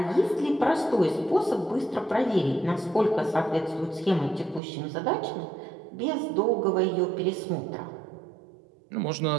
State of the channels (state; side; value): drops out; left; at 4.6 s